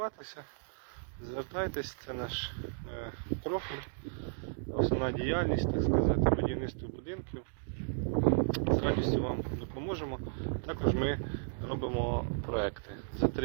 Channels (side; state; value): left; silent; digital silence